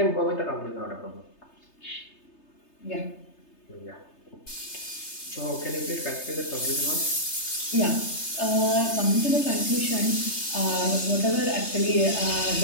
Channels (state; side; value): late; right; 3.3 ms